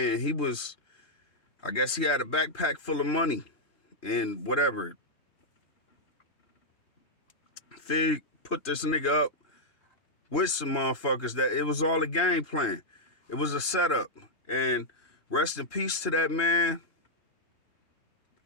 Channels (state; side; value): late; right; 3.2 ms